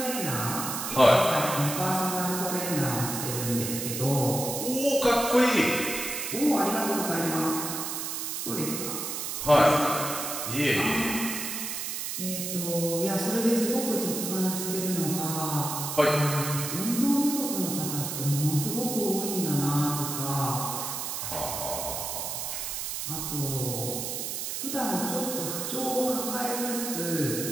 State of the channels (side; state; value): right; noise; hiss, 4 dB below the sound